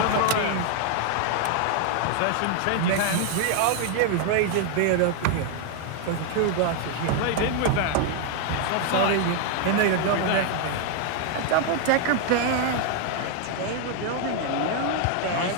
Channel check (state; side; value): different; both; correlation 0.00